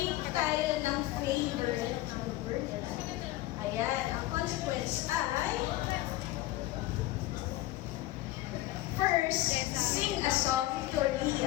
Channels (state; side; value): quieter; right; 16.4 dB